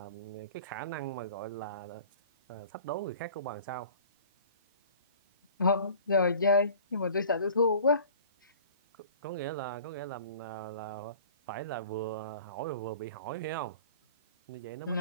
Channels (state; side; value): inverted; both; correlation -0.46